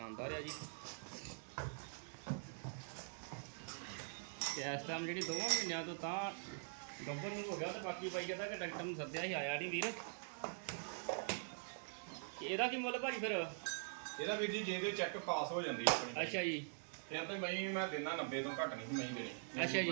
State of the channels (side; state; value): left; silent; digital silence